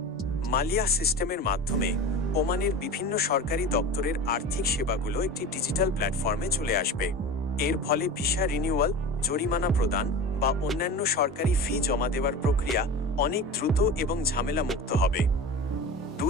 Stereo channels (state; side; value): normal; both; correlation 0.31